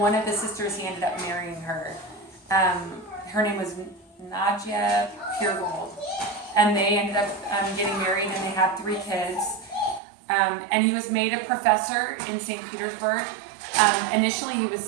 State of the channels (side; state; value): left; drops out; at 10.0 s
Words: of the sisters, he ended up marrying her. Her name was Nadia Puregold. And they ended up getting married, and they had 3 kids. And he was made a professor in St. Petersburg. Initially, he was